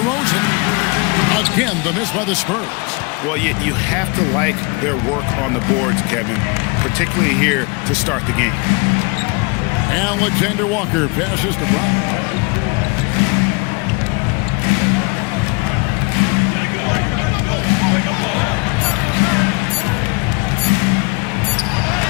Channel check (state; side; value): quieter; right; 29.6 dB